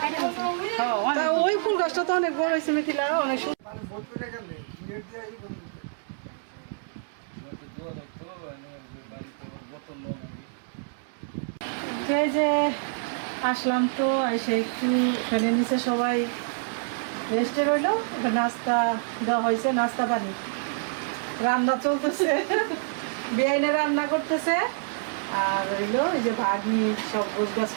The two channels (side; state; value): left; silent; 60 dB below the other